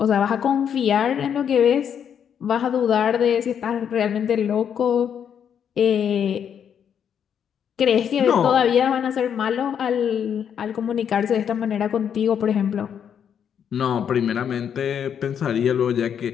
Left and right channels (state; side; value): quieter; right; 8.3 dB